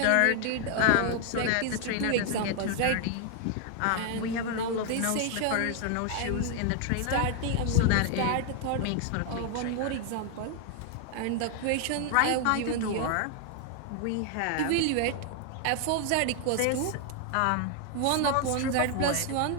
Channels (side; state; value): both; different; correlation 0.00